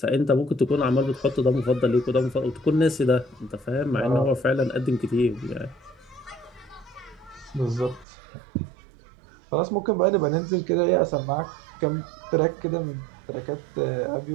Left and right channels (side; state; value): left; drops out; at 8.1 s